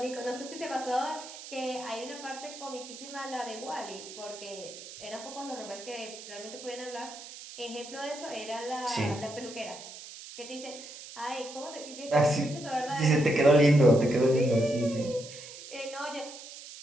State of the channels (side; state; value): right; noise; hiss, 14 dB below the sound